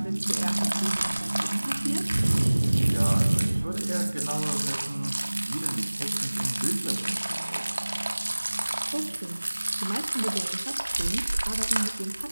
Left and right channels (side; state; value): both; inverted; correlation -1.00